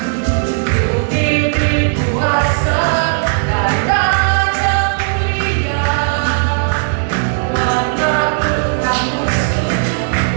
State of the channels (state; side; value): silent; left; 63 dB below the other